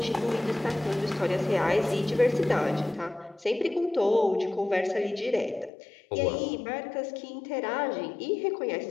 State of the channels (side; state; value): right; drops out; at 5.7 s